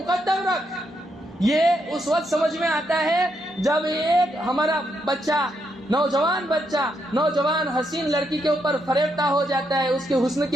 رکھ، یہ اس وقت سمجھ میں آتا ہے جب ایک ہمارا بچہ، نوجوان حسین لڑکی کے اوپر فریفتہ ہو جاتا ہے، اس کے حسن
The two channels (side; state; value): both; normal; correlation 0.79